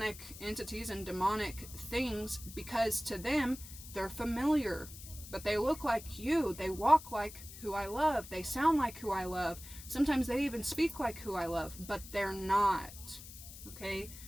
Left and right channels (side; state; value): left; noise; hiss, 15 dB below the sound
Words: entities and demonic things, because to them they're familiar, but they look like you, they walk like who I love, they sound like who I love, sometimes they even speak like who I love, but they're not, okay?